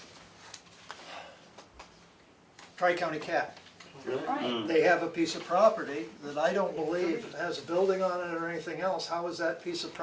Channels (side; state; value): both; identical; correlation 1.00